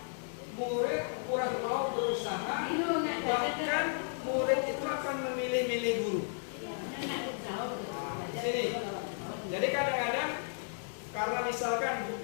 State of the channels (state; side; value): silent; right; digital silence